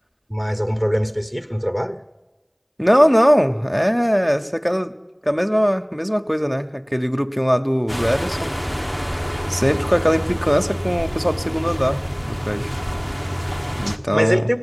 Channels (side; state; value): both; identical; correlation 1.00